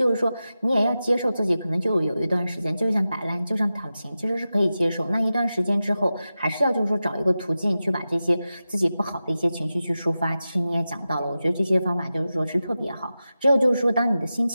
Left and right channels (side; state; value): both; inverted; correlation -0.93